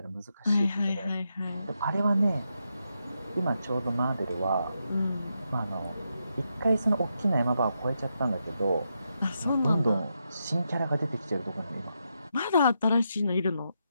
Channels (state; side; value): inverted; both; correlation -0.83